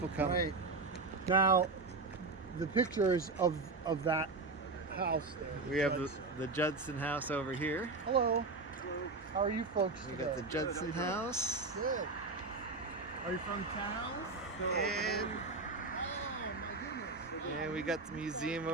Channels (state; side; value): quieter; left; 3.8 dB